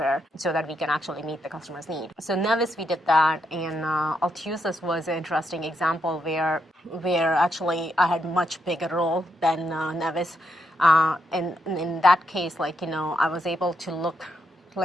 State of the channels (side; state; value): both; normal; correlation 0.80